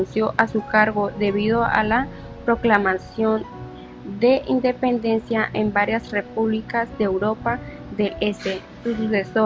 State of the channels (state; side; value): identical; both; correlation 1.00